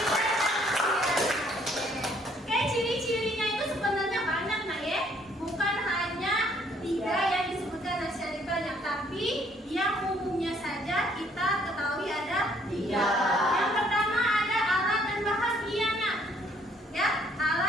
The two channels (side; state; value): both; normal; correlation 0.64